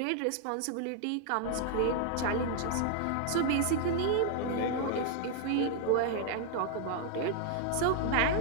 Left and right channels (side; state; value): both; different; correlation 0.00